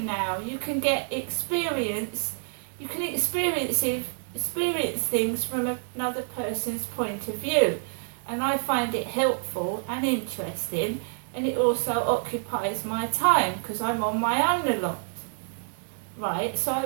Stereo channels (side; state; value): left; silent; digital silence